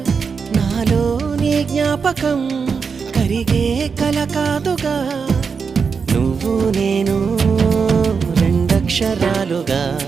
నాలో నీ జ్ఞాపకం కరిగే కల కాదుగా నువ్వు నేను రెండక్షరాలుగా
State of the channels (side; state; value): left; quieter; 5.6 dB